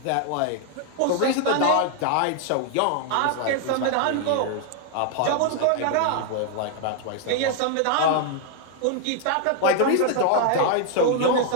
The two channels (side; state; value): both; different; correlation 0.00